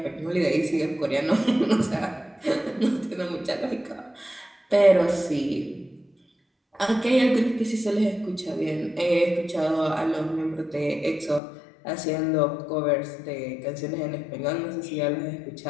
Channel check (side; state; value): right; drops out; at 11.4 s